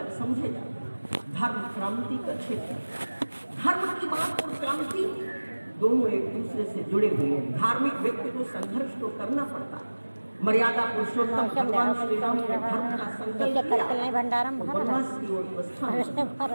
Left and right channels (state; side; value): inverted; both; correlation -1.00